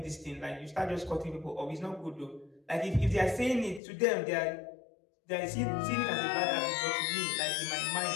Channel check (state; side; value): drops out; right; at 3.8 s